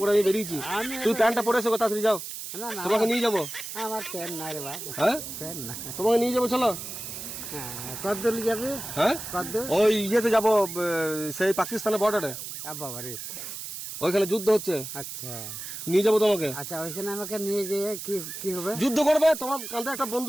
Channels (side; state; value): right; noise; hiss, 8 dB below the sound